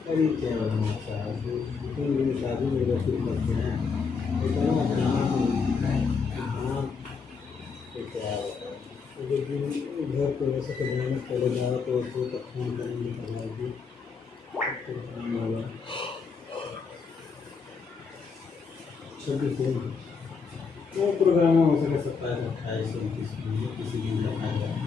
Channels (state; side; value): quieter; right; 5.2 dB